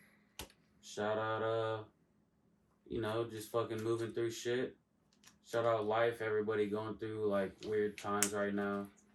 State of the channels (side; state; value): both; identical; correlation 1.00